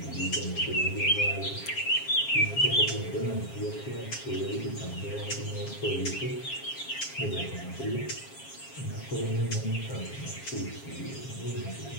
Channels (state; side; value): late; right; 7.4 ms